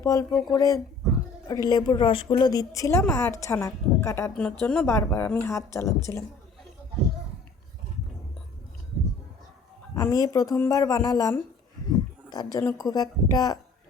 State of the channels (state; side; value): quieter; right; 4.0 dB